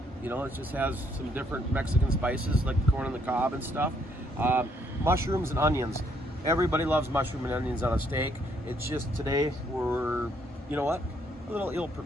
You know, it just has some different Mexican spices like the corn on the cob and stuff. Mushrooms and onions. Everybody loves mushroom and onions on a steak. It's just today we're, you know what, a little ill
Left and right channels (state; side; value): normal; both; correlation 0.69